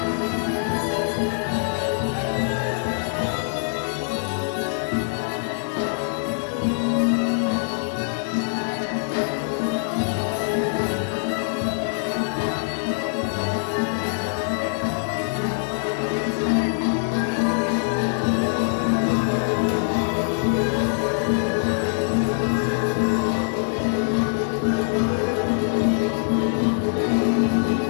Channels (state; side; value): silent; right; digital silence